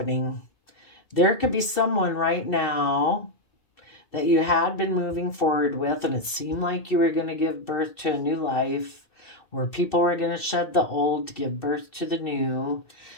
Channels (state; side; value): late; right; 2.7 ms